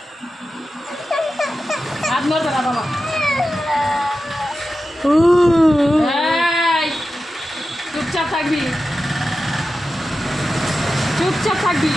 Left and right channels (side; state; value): both; normal; correlation 0.92